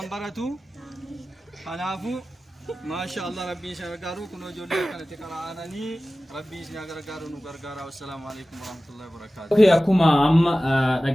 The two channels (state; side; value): normal; both; correlation 0.96